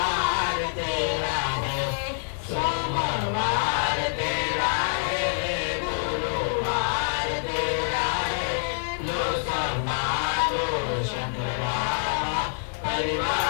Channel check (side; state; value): right; silent; digital silence